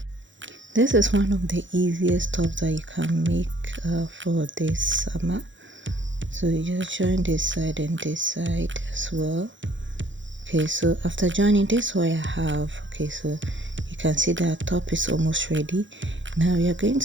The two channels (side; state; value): left; late; 0.55 ms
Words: This is one of the easiest tops that you can make for this summer. So you just join this side and this side as well. Okay, so after joining this, what I have, okay, so you can see that top is almost ready. Now we are going